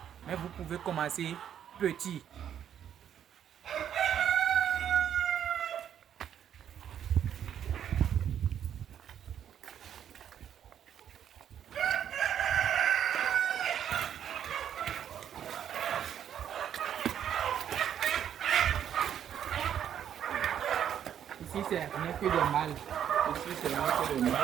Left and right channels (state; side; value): quieter; left; 9.4 dB